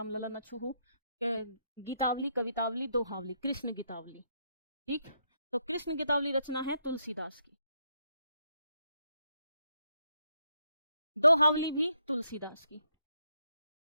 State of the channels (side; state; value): both; inverted; correlation -0.78